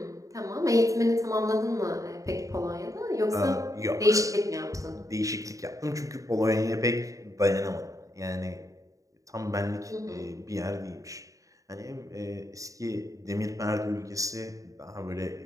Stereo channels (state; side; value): late; left; 0.16 ms